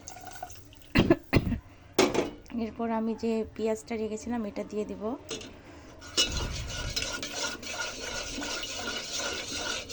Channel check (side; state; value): both; identical; correlation 1.00